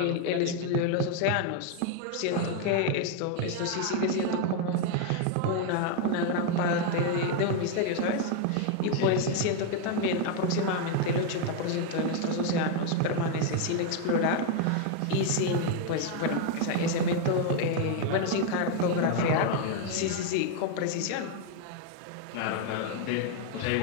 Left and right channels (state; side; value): different; both; correlation 0.01